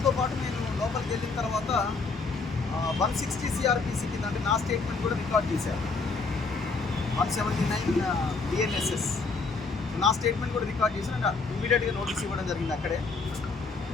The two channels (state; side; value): quieter; right; 4.2 dB